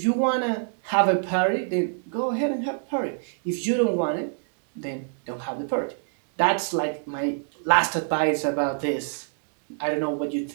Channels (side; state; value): left; silent; digital silence